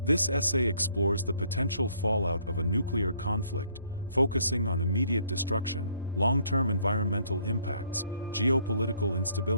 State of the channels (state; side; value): inverted; both; correlation -0.64